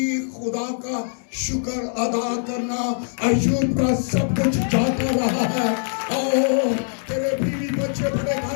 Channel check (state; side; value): silent; right; digital silence